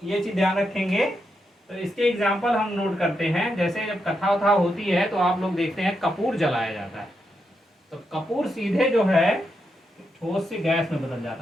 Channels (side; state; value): both; normal; correlation 0.83